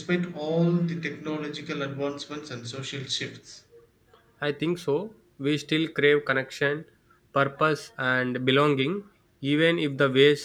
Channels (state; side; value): identical; both; correlation 1.00